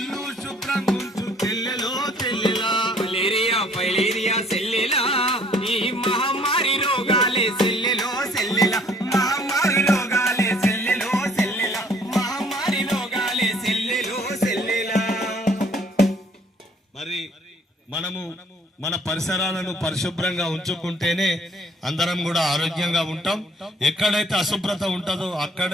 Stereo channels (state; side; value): normal; both; correlation 0.59